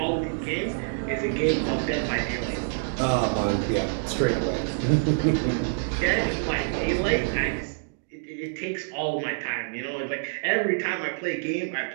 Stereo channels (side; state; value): left; silent; digital silence